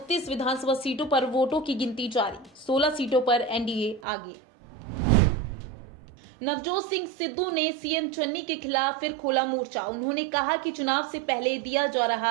विधानसभा सीटों पर वोटों की गिनती जारी। 16 सीटों पर एनडीए आगे। नवजोत सिंह सिद्धू ने सीएम चन्नी के खिलाफ फिर खोला मोर्चा। उन्होंने कहा कि चुनाव से पहले दिया जा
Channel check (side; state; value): left; drops out; at 4.0 s